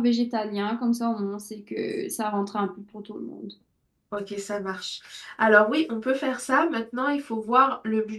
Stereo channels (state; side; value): identical; both; correlation 1.00